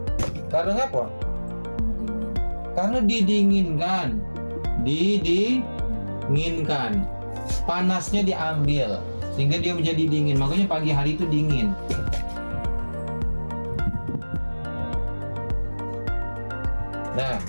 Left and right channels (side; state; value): both; inverted; correlation -1.00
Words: Karena apa? Karena didinginkan. Panasnya diambil sehingga dia menjadi dingin. Makanya pagi hari itu dingin. Nah,